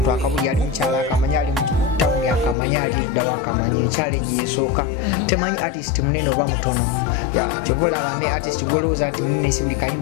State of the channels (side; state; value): right; drops out; at 2.6 s